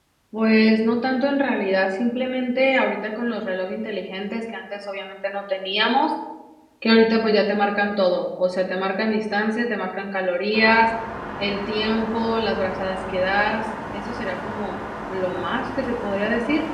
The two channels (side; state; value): both; identical; correlation 1.00